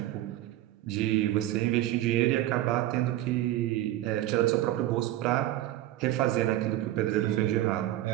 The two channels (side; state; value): left; quieter; 14.5 dB